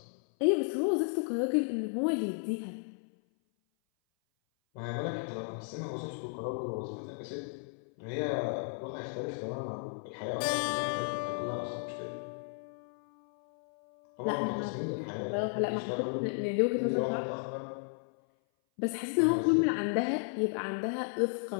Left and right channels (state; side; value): silent; right; 55 dB below the other